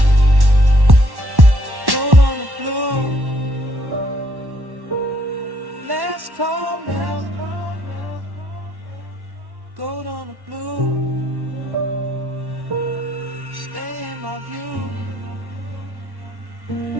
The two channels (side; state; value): left; late; 1.1 ms